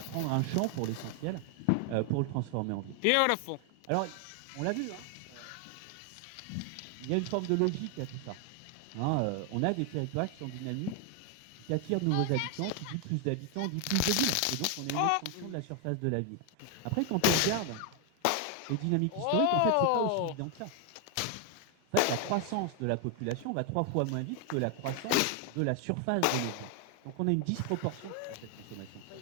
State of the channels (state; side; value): different; both; correlation 0.00